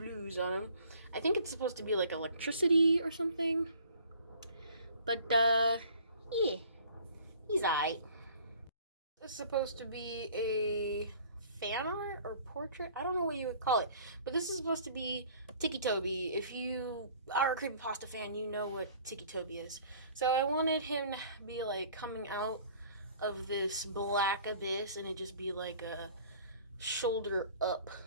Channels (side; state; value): both; inverted; correlation -0.52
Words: on him. I think it's supposed to be like electricity or something. But, yeah. He's alright. It's supposed to be a fan art or portrait. I don't know what you would call it. But this is supposed to be Inktober. If you are a creepypasta fan, you know what Inktober is. So I wanted him to be like coming out of this black abyss and it just be like a shoulder up